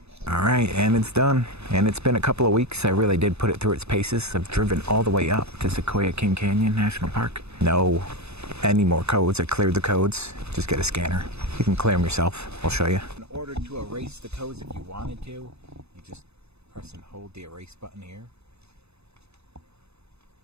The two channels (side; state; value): left; late; 0.80 ms